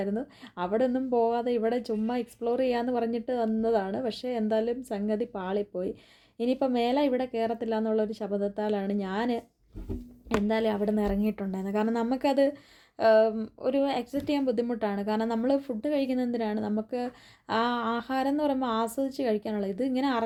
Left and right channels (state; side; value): identical; both; correlation 1.00